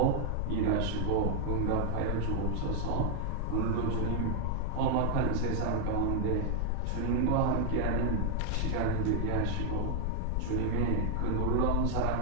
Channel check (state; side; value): different; both; correlation -0.01